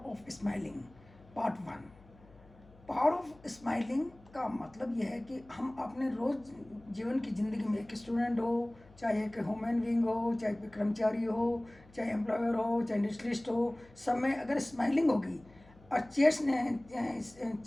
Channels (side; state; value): left; noise; hum, 25 dB below the sound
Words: of smiling, part 1. Power of smiling का मतलब यह है कि हम अपने रोज़ जीवन की ज़िंदगी में एक स्टूडेंट हो, चाहे एक ह्यूमन बीइंग हो, चाहे कोई कर्मचारी हो, चाहे एम्प्लॉयर हो, चाहे इंडस्ट्रियलिस्ट हो, सब में अगर स्माइलिंग होगी और